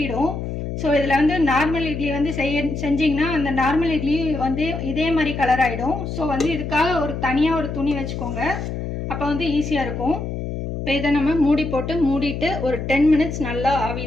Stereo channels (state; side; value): noise; left; hum, 5 dB below the sound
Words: ஸோ இதில் நார்மல் இட்லி செஞ்சிங்கன்னா அந்த நார்மல் இட்லி இதே மாதிரி கலர் ஆகிடும். ஸோ இதுக்காக தனியாக ஒரு துணி வச்சுக்கோங்க. அப்போ ஈஸியாக இருக்கும். இப்போ இதை நம்ம மூடிட்டு ஒரு 10 minutes நல்லா